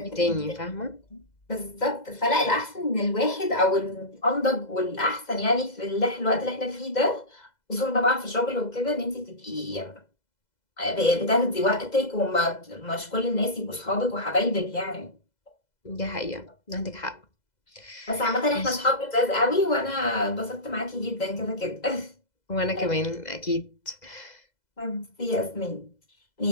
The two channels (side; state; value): right; late; 2.0 ms